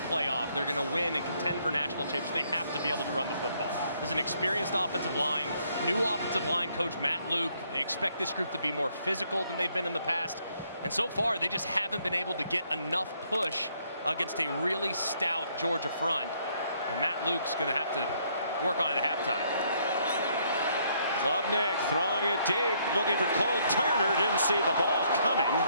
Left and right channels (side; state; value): both; inverted; correlation -0.69